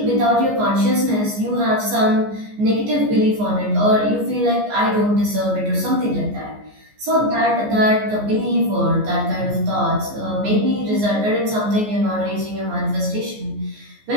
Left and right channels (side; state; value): left; late; 14 ms